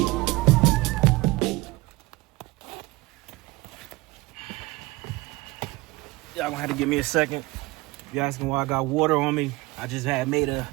Y'all gonna have to give me a second. You asking why I got water on me? I just had made a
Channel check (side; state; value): left; quieter; 21.7 dB